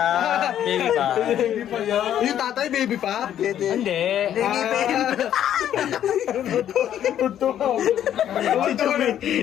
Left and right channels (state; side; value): quieter; right; 10.6 dB